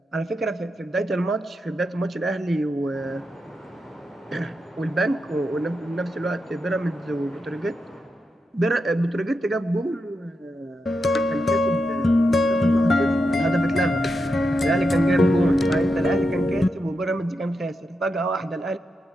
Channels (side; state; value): both; normal; correlation 0.86